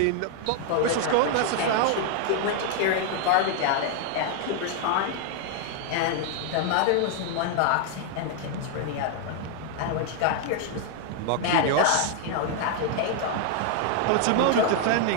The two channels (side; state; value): both; different; correlation 0.00